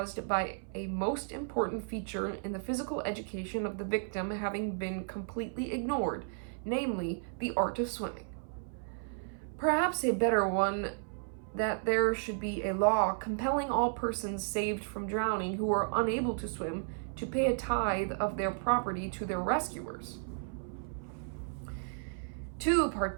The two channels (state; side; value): silent; left; 55 dB below the other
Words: by a most important feature in the physical education of the victim having been completely ignored, namely the art of swimming. Perhaps a better one that there should be a law compelling all persons saved from drowning who are unable to swim to pay a tithe of their property to their rescuers. Two